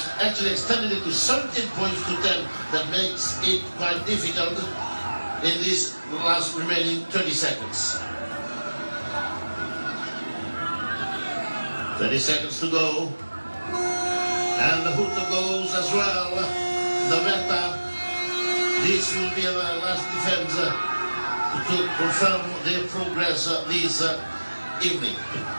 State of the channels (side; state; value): both; inverted; correlation -1.00